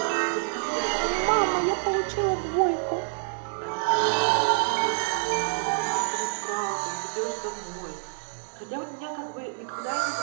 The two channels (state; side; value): silent; left; digital silence